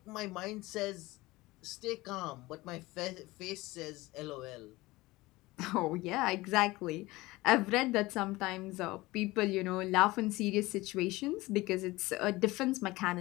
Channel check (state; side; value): quieter; right; 20.2 dB